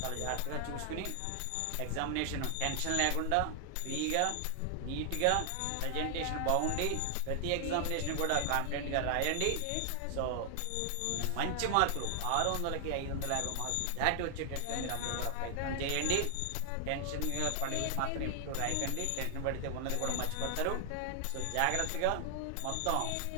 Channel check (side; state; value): both; different; correlation 0.00